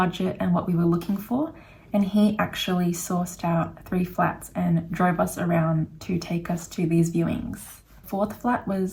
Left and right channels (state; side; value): identical; both; correlation 1.00